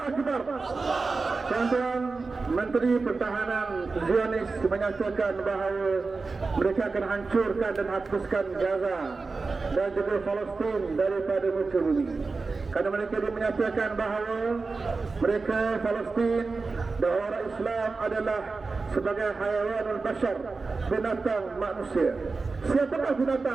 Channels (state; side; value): quieter; left; 4.1 dB